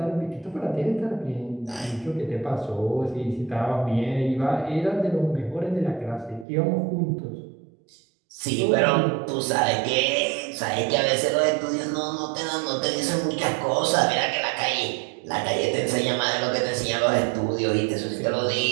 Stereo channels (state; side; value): drops out; left; at 6.5 s